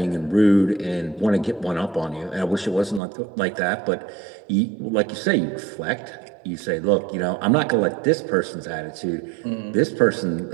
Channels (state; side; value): drops out; left; at 3.0 s